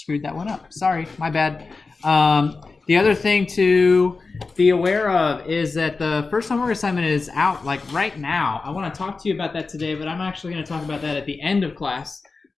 that one up. Sorry, my bad. The other thing to be aware of is that the first homework assignment is out like right now. I want to talk to you about that today, but I'm actually going to talk about that at the end of class.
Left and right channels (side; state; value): right; quieter; 4.1 dB